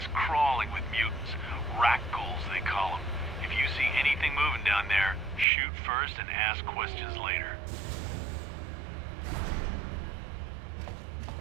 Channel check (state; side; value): drops out; left; at 5.5 s